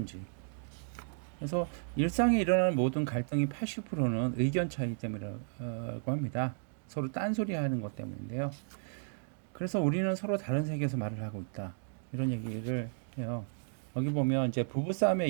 그래서 일상에 일어나는 모든 갈등이 80%는 의견 차이 때문이라고 합니다. 서로 딴소리 하는 것 때문인데요. 그래서 우리는 서로 다른 세계에서 말을 하고 있다. 이런 얘기를 해요. 여기 보면 이제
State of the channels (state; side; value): silent; left; digital silence